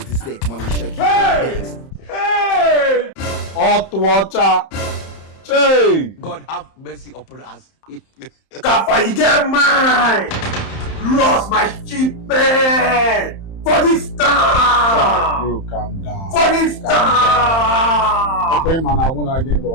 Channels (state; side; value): late; right; 31 ms